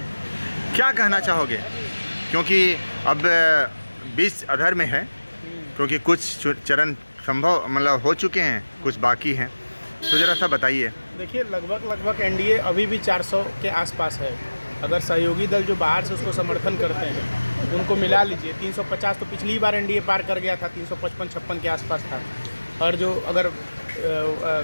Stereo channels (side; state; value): both; inverted; correlation -1.00